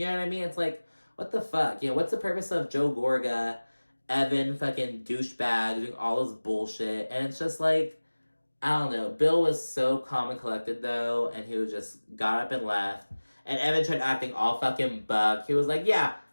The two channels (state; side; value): inverted; both; correlation -1.00